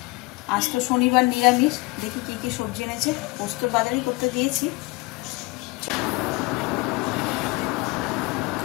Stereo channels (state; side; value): quieter; right; 24.4 dB